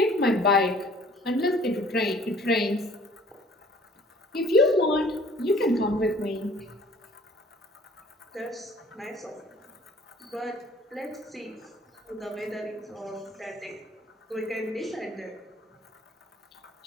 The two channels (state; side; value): normal; both; correlation 0.53